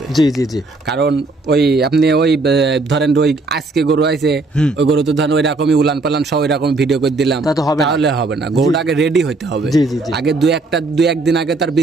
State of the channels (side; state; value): left; quieter; 3.4 dB